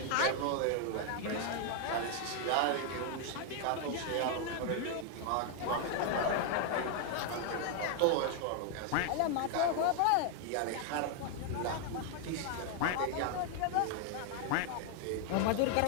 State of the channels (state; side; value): different; both; correlation 0.00